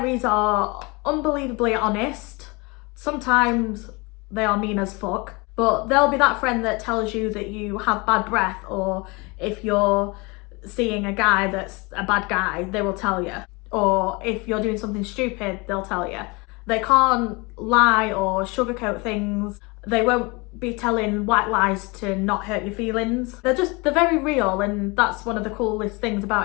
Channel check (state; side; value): quieter; right; 27.0 dB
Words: are unbelievably honest. Sometimes they are mean as fuck, but they'll be that friend that tells you that you have bad breath, or if you're seeing a guy that's a bad guy, they will tell you. Or if you're doing something stupid, they'll tell you. They can't lie or sugarcoat things. They won't be telling white lies to not hurt your feelings. They're very real, and that's one of the coolest things